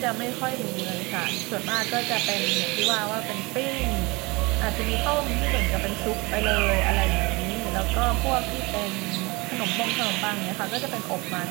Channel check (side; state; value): left; quieter; 25.4 dB